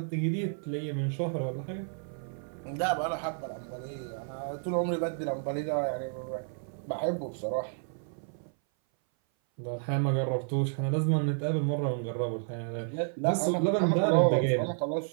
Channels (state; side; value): silent; left; 57 dB below the other